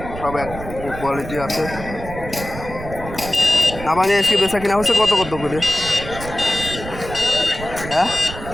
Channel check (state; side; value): noise; right; rumble, 11 dB below the sound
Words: সব এক কোয়ালিটি আছে। নাবানি আজকে বেচা কিনা হচ্ছে কত কত করে? হ্যাঁ,